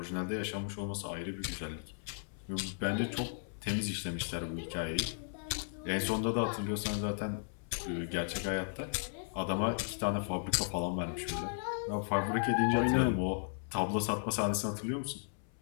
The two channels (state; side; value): silent; right; 54 dB below the other